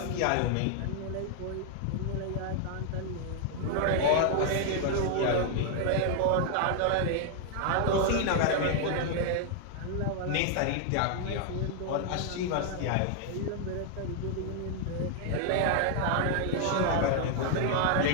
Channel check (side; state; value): both; different; correlation 0.00